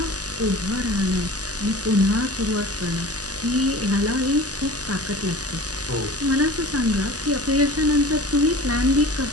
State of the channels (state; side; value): late; left; 0.67 ms